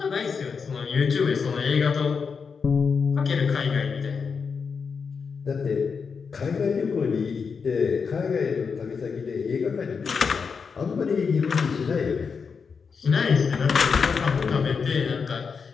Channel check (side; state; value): right; quieter; 5.7 dB